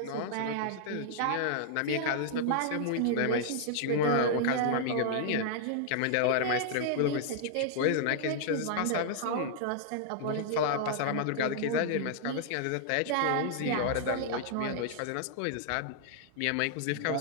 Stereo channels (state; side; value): different; both; correlation -0.01